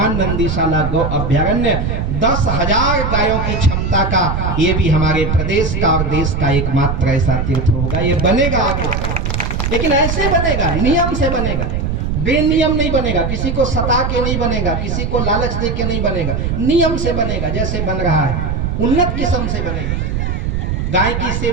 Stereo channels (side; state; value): right; noise; rumble, 1 dB below the sound